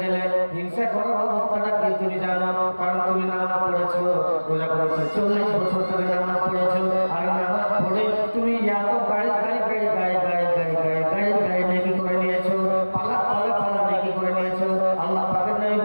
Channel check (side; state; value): both; inverted; correlation -1.00